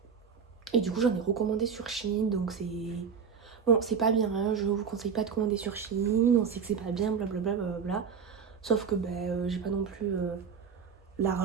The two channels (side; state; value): left; quieter; 6.3 dB